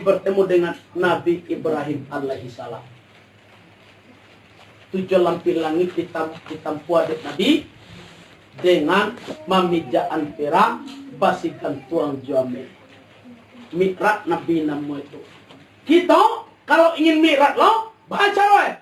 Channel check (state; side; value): identical; both; correlation 1.00